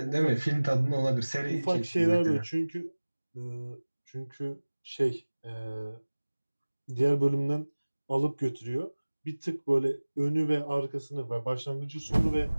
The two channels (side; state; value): both; inverted; correlation -1.00